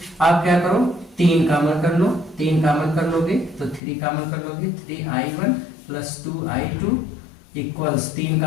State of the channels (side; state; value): right; drops out; at 3.8 s